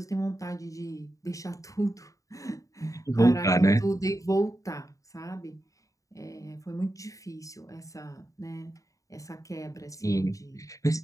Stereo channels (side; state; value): right; late; 0.16 ms